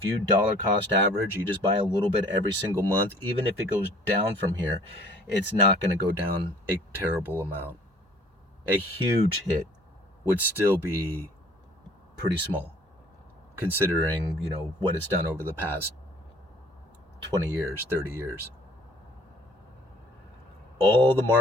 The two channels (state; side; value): normal; both; correlation 0.53